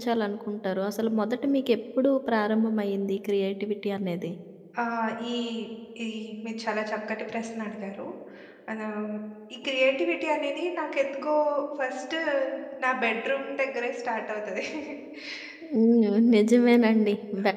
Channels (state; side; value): identical; both; correlation 1.00